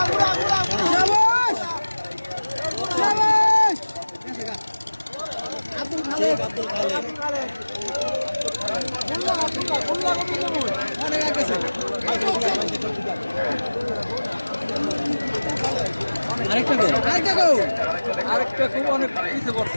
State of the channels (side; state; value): both; inverted; correlation -1.00